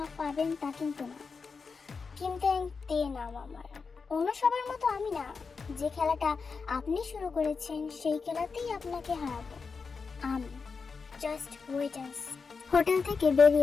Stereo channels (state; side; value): quieter; right; 5.0 dB